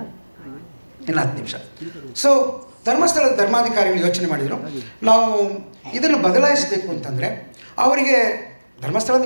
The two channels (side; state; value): both; inverted; correlation -1.00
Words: ಇನ್ನು 10 ನಿಮಿಷ. ಸೊ ಧರ್ಮಸ್ಥಳದ ಧರ್ಮಾಧಿಕಾರಿಗಳು ಯೋಚನೆ ಮಾಡಿದರು, ನಾವು ಇದನ್ನು ಬದಲಾಯಿಸಬೇಕು ಅಂತಂದರೆ ಅವರಿಗೆ, ಧರ್ಮಸ್ಥಳ